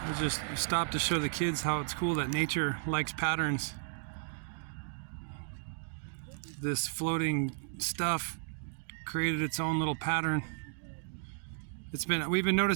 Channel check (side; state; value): left; silent; digital silence